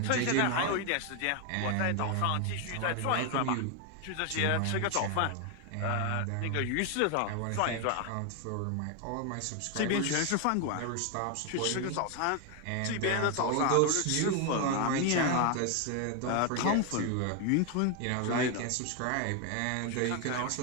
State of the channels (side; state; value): both; different; correlation 0.01